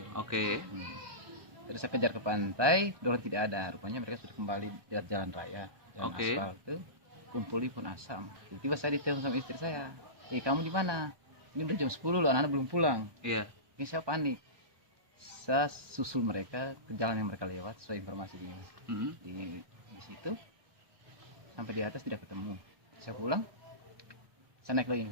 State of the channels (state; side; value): late; left; 1.2 ms